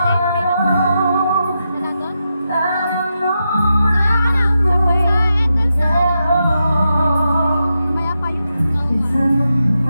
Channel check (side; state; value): both; inverted; correlation -0.86